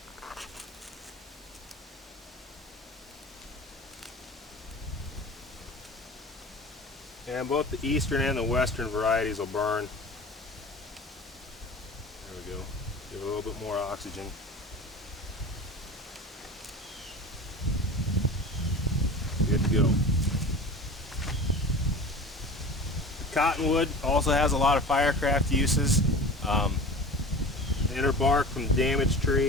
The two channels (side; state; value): both; normal; correlation 0.38